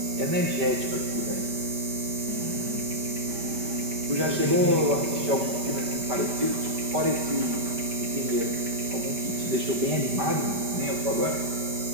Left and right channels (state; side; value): late; left; 5.1 ms